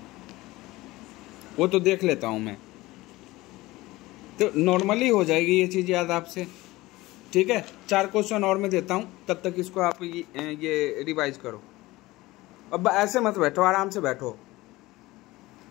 वो तो देख लेता हूँ मैं, तो नॉर्मली हो जाएगी ये चीज़ याद आपसे। ठीक है, 4 क्वेश्चन और मैं देता हूँ, तब तक इसको आप ये रिवाइज करो। अब ऐसे मत बैठो, आराम से बैठो।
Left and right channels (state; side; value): quieter; right; 19.3 dB